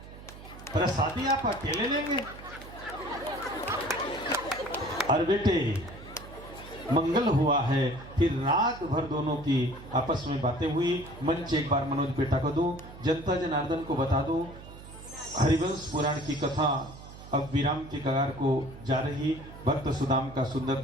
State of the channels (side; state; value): right; noise; hum, 16 dB below the sound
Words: प्रसादी आप अकेले लेंगे। और बेटे मंगल हुआ है। फिर रात भर दोनों की आपस में बातें हुई। मंच एक बार मनोज बेटा को दूं, जनता जनार्दन को बता दूं, हरिवंश पुराण की कथा अब विराम के कगार को जा रही। भक्त सुदाम का सुंदर